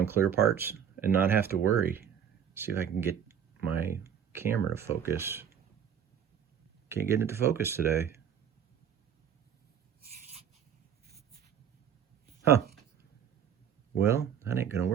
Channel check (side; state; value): left; quieter; 8.5 dB